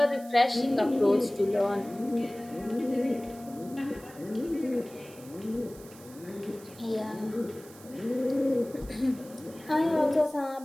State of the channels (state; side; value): noise; right; hiss, 21 dB below the sound